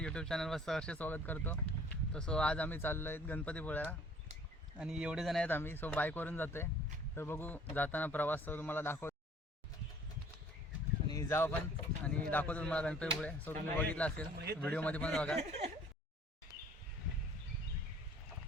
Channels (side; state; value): both; normal; correlation 0.54